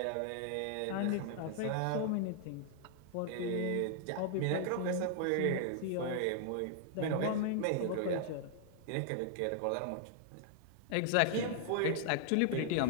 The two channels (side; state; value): both; different; correlation -0.01